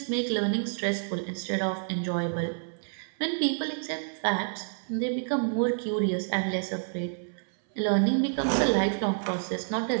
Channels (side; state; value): left; silent; 59 dB below the other